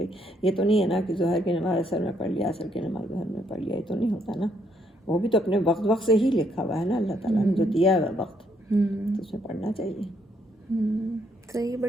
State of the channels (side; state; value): both; normal; correlation 0.72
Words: یہ تو نہیں ہے نا کہ ظہر کی نماز عصر میں پڑھ لیا, عصر کی نماز ظہر میں پڑھ لیا, یہ تو نہیں ہوتا نا. وہ بھی تو اپنے وقت سے ہی لکھا ہوا ہے نا اللہ تعالیٰ نے, جو دیا ہے وقت, تو اس میں پڑھنا چاہیے. صحیح.